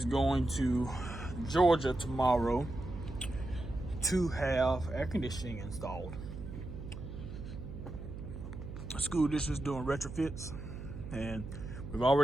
going to Georgia tomorrow to have air conditioning installed. The school district is doing retrofits, and we've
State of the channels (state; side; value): noise; right; hum, 9 dB below the sound